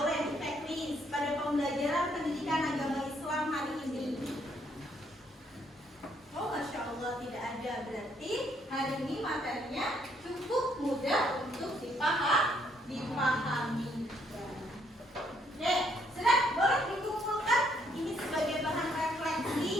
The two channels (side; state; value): both; normal; correlation 0.70